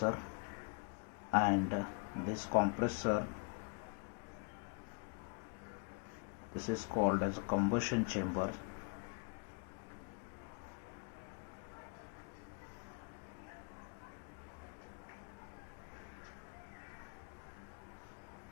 and this compressor, this is called as a combustion chamber.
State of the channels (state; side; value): quieter; right; 37.5 dB